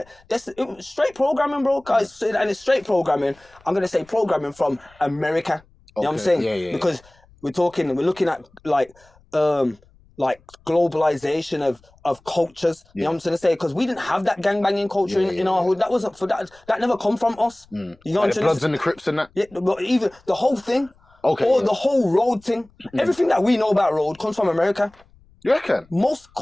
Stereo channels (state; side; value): noise; left; rumble, 30 dB below the sound